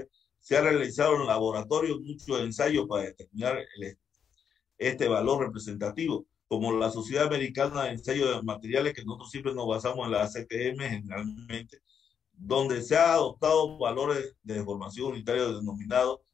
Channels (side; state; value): right; quieter; 7.6 dB